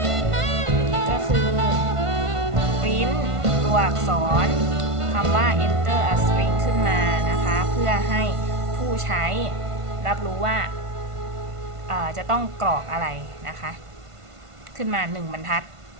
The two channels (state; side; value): late; left; 1.5 ms